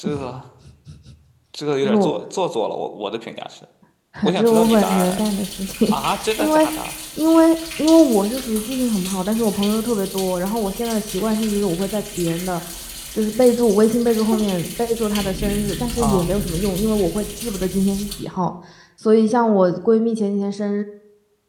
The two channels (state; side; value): identical; both; correlation 1.00